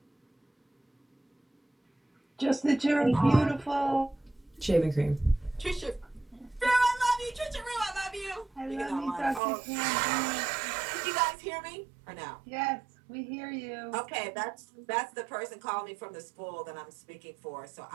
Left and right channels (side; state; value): left; drops out; at 9.4 s